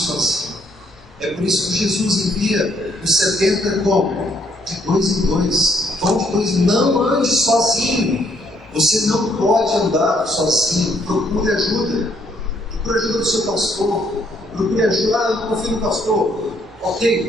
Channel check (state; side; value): normal; both; correlation 0.69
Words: É por isso que Jesus envia os 70 como? De 2 em 2. Vão de 2. Não ande sozinho. Você não pode andar sozinho. Procure ajuda. Procure ajuda do seu pastor. Procure ajuda. Eu não confio no pastor.